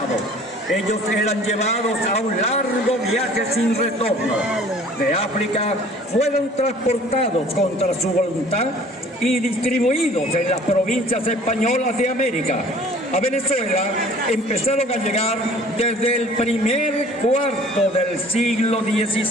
Ellos eran llevados a un largo viaje sin retorno. De África fueron transportados contra su voluntad y distribuidos en las provincias españolas de América. A Venezuela empezaron a llegar desde el primer cuarto del siglo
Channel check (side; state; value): both; normal; correlation 0.50